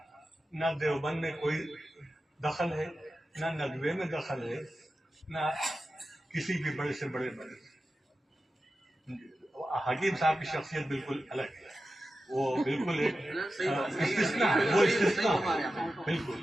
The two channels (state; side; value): normal; both; correlation 0.92